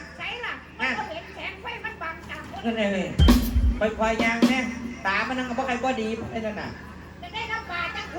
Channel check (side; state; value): both; identical; correlation 1.00